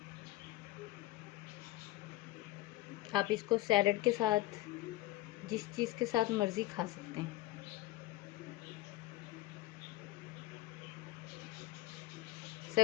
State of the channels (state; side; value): quieter; right; 16.5 dB